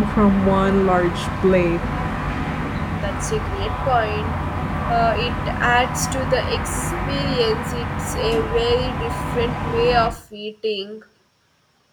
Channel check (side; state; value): both; identical; correlation 1.00